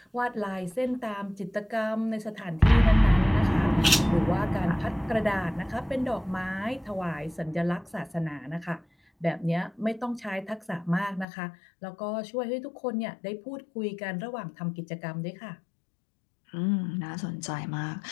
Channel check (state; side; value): drops out; right; at 11.2 s